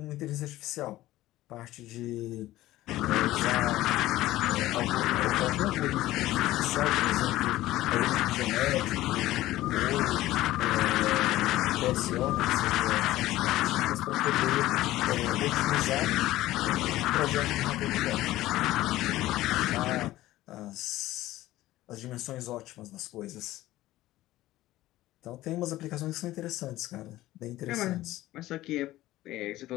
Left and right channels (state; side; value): quieter; right; 16.1 dB